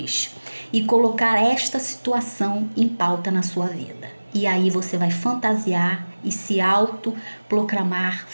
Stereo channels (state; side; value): inverted; both; correlation -1.00